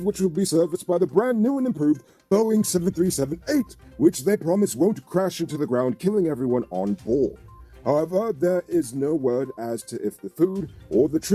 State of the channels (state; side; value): identical; both; correlation 1.00